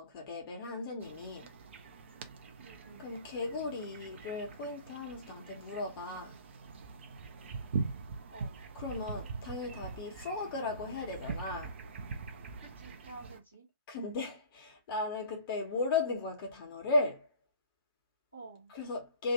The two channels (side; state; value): both; inverted; correlation -0.47